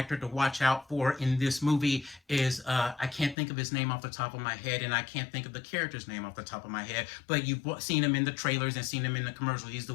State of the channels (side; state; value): right; drops out; at 3.4 s